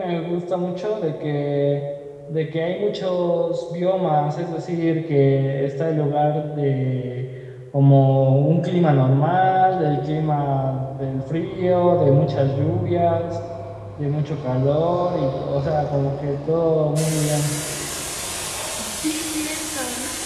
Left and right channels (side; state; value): both; identical; correlation 1.00